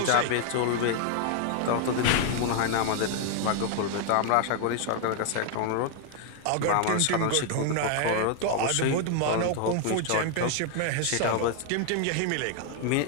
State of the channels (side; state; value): both; different; correlation 0.00